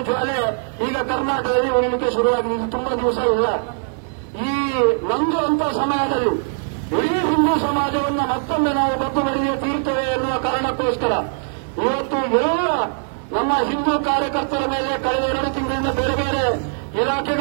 ಜ್ವಾಲೆ ಈಗ ಕರ್ನಾಟಕದಲ್ಲಿ ಉರಿಲಿಕ್ಕೆ ಶುರುವಾಗಿದೆ. ಇದು ತುಂಬಾ ದಿವಸ ಇಲ್ಲ. ಈ ನಂದುವಂತ ಸಮಯದಲ್ಲಿ ಇಡೀ ಹಿಂದೂ ಸಮಾಜವನ್ನ ಮತ್ತೊಮ್ಮೆ ನಾವು ಬಗ್ಗು ಬಡಿಗೆ ತೀರ್ತೇವೆ ಎನ್ನುವ ಕಾರಣಕ್ಕೋಸ್ಕರ ಇವತ್ತು ಎಲ್ಲ ನಮ್ಮ ಹಿಂದೂ ಕಾರ್ಯಕರ್ತರ ಮೇಲೆ ಕಳೆದ 2 ತಿಂಗಳಿಂದ ಬೇರೆ ಬೇರೆ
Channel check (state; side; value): silent; left; digital silence